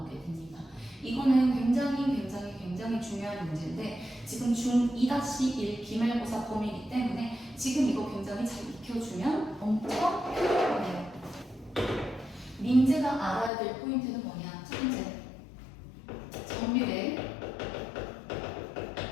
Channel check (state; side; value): drops out; right; at 13.5 s